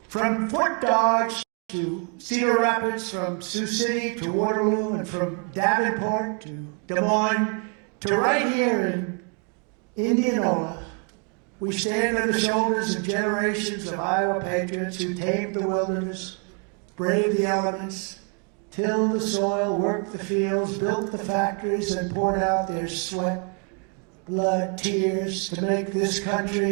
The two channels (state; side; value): quieter; left; 38.0 dB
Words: from Fort Dodge to Cedar Rapids, from Sioux City to Waterloo, and from Davenport to Des Moines to right here in Indianola, we stand on the shoulders of generations of Iowa patriots who tamed the wilderness, braved the elements, tilled the soil, worked the fields, built the factories, and poured out their sweat, blood, tears to make this